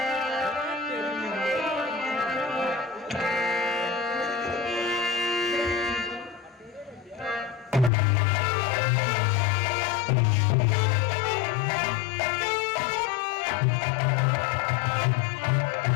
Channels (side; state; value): right; drops out; at 7.9 s